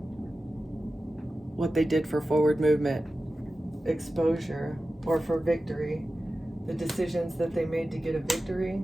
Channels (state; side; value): normal; both; correlation 0.94